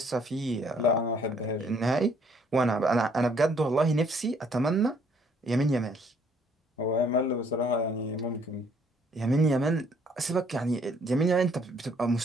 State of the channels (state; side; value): normal; both; correlation 0.63